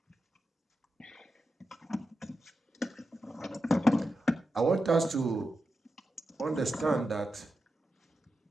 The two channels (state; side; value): normal; both; correlation 0.89